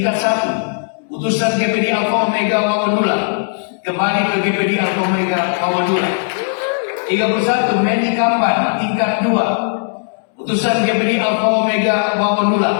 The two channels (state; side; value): silent; right; 68 dB below the other